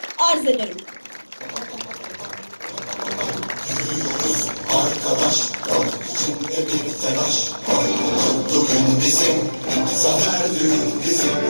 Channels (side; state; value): both; inverted; correlation -1.00